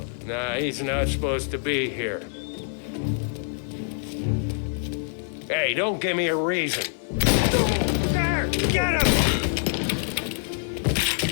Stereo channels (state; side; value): silent; right; digital silence